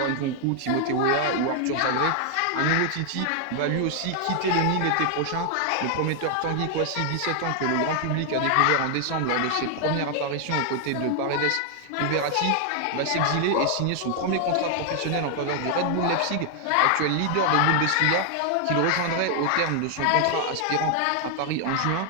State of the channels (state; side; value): different; both; correlation 0.00